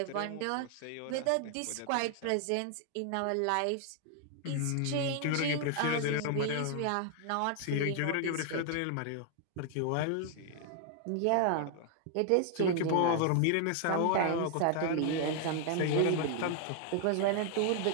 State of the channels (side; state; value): both; different; correlation 0.00